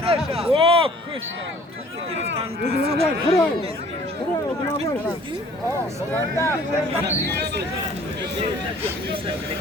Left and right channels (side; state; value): both; normal; correlation 0.53